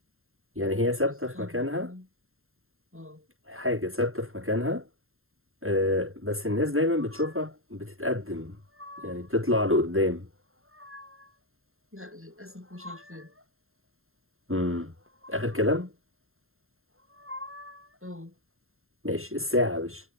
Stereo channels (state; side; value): late; left; 0.61 ms